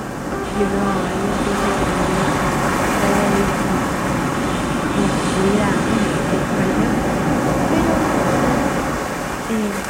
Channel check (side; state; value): both; identical; correlation 1.00